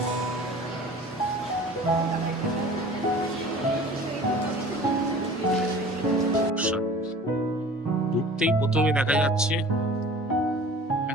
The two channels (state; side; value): normal; both; correlation 0.44